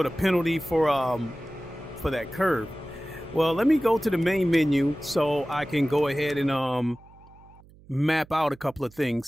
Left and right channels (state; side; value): noise; right; hum, 25 dB below the sound